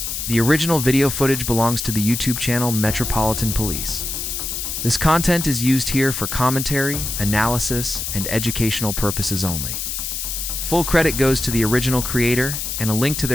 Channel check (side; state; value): left; noise; hiss, 4 dB below the sound